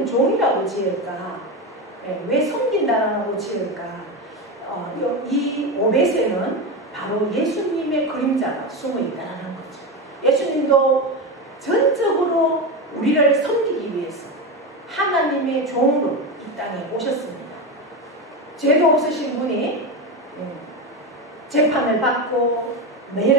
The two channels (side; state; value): both; normal; correlation 0.17